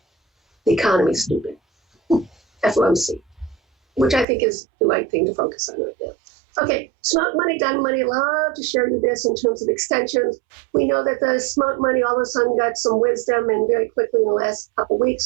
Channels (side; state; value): left; drops out; at 4.2 s